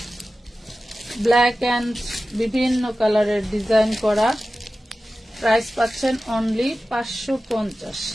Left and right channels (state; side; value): normal; both; correlation 0.95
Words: ব্ল্যাক অ্যান্ড বিভিন্ন কালারের ডিজাইন করা। প্রাইস পাচ্ছেন অনলি 550,